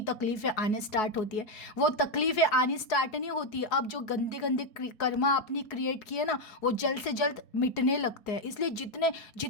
तकलीफ़ें आने स्टार्ट होती है। वो तकलीफ़ें आनी स्टार्ट नहीं होती, अब जो गंदे गंदे कर्मा आपने क्रिएट किए ना, वो जल्द से जल्द मिटने लगते हैं। इसलिए जितने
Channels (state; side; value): late; right; 4.7 ms